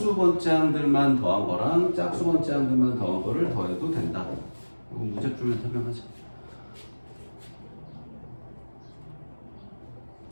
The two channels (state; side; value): inverted; both; correlation -1.00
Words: 더한 거랑 짝수번째항들만 더한 거를 더해도 된다. 이거 문제 풀면 설명하자.